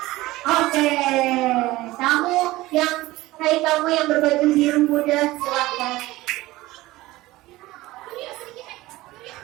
Oke, kamu yang kamu yang berbaju biru muda, silakan.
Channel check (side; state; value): left; quieter; 18.4 dB